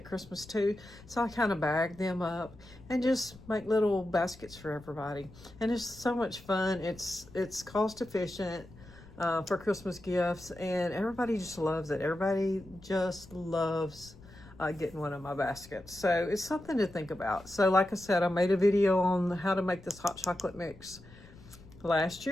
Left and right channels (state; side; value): noise; left; rumble, 21 dB below the sound